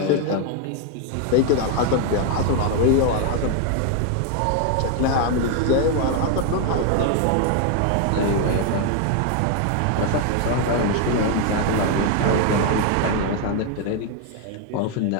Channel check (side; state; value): both; different; correlation 0.01